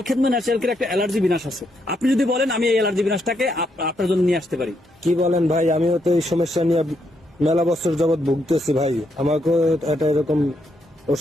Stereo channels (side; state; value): both; normal; correlation 0.78